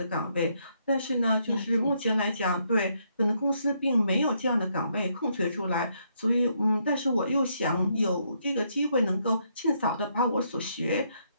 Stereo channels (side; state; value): both; inverted; correlation -0.74